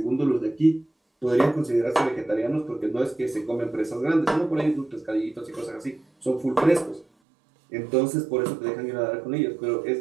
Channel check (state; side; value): drops out; left; at 7.1 s